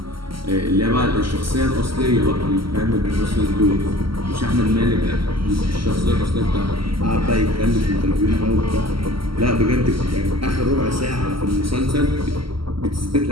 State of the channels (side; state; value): left; late; 0.74 ms